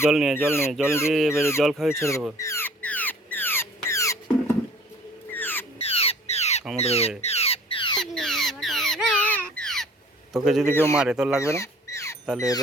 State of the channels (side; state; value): both; normal; correlation 0.51